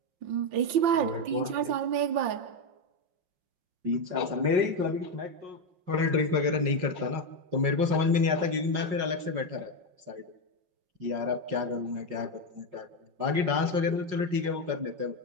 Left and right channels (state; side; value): late; left; 5.5 ms